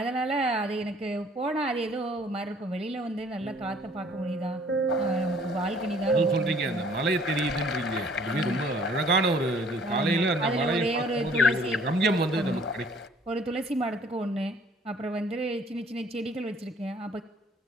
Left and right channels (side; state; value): both; normal; correlation 0.57